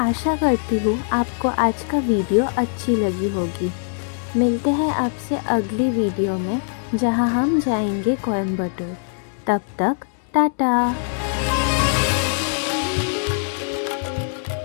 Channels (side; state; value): right; silent; digital silence